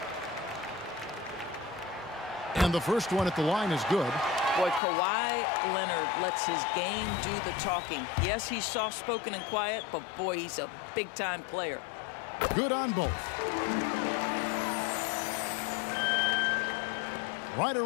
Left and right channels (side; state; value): right; drops out; at 4.8 s